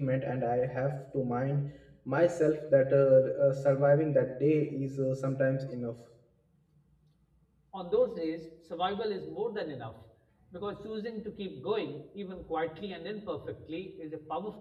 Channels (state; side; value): identical; both; correlation 1.00